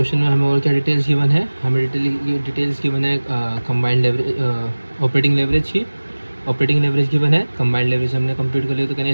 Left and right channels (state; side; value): inverted; both; correlation -1.00